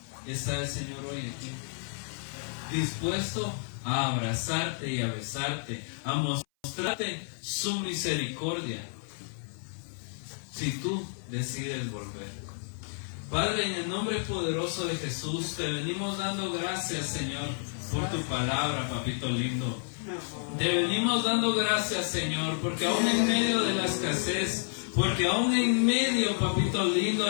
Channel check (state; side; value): silent; right; 57 dB below the other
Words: está el Señor hoy aquí, dispuesto a abrazarte y a besarte, a mostrarte su misericordia, si tú decides volver. Padre, en el nombre poderoso de Jesús, te venimos dando gracias, Señor, por tu palabra, papito lindo. Te venimos dando gracias, Señor, porque aún en medio de la escasez, porque aún en medio, papito lindo,